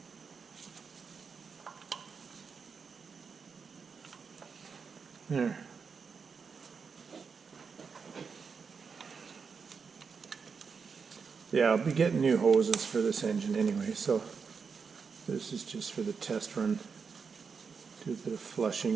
There. Yeah, I'll be getting new hoses for this engine anyway, so this is just for the test run. Do a bit of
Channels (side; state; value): left; quieter; 5.6 dB